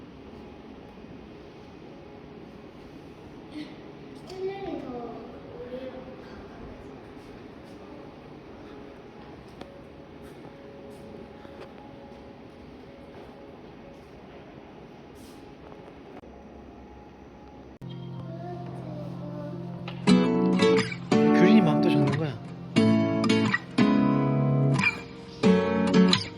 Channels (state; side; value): identical; both; correlation 1.00